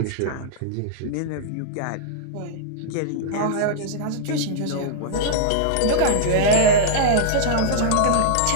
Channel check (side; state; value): both; different; correlation -0.02